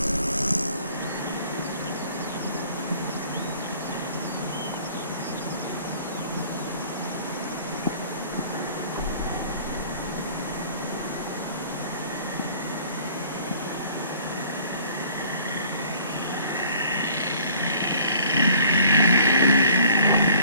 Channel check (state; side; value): inverted; both; correlation -0.54